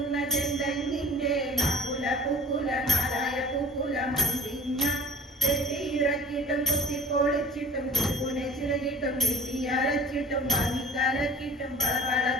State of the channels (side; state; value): both; normal; correlation 0.45